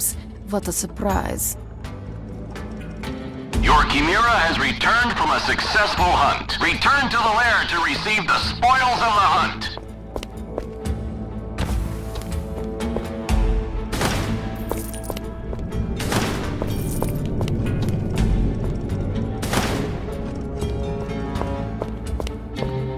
What a surprise. Your Chimera has returned from a successful hunt. Return to the lair to receive the spoils of the hunt.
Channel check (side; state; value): both; identical; correlation 1.00